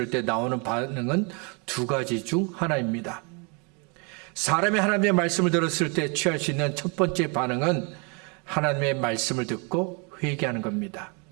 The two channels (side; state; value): left; quieter; 33.3 dB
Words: 때 나오는 반응은 두 가지 중 하나입니다. 사람이 하나님의 말씀을 들었을 때 취할 수 있는 첫 번째 반응은 하나님의 말씀을 듣고 회개하는 겁니다.